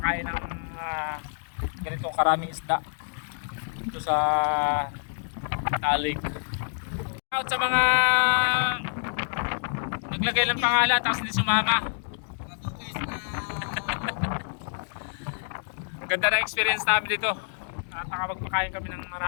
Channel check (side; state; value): right; silent; digital silence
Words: ng ganitong karaming isda dito sa Talig. Shoutout sa mga naglagay ng pangalan tapos hindi sumama. Ganda na experience namin dito at nakapagpakain kami ng